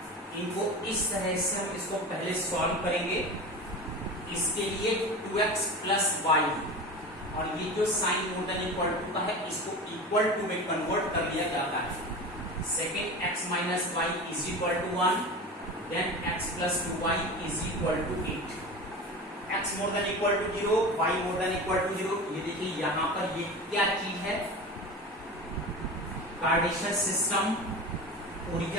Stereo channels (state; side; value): normal; both; correlation 0.31